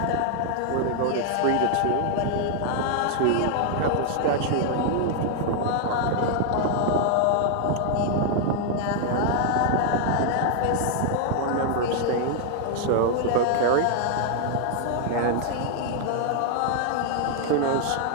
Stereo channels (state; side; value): different; both; correlation 0.00